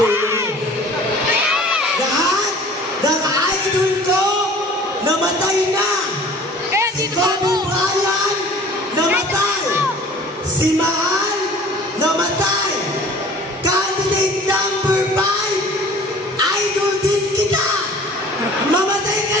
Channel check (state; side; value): normal; both; correlation 0.47